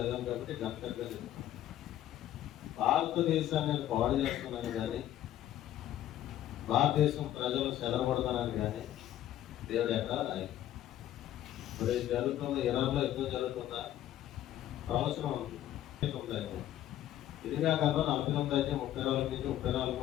కాబట్టి గంటగా చెప్తాను. భారతదేశాన్ని నేను పాడు చేస్తున్నాను కానీ, భారతదేశం ప్రజలు చెదరబడతానని కానీ దేవుడు ఎక్కడ రాయలేదు. ఇప్పుడు జరుగుతున్న ఇరాన్లో యుద్ధం జరుగుతుందా? సంవత్సరం ఉంది. ఇది కాక 49 అయితే 34 నుంచి 34,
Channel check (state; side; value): quieter; right; 12.6 dB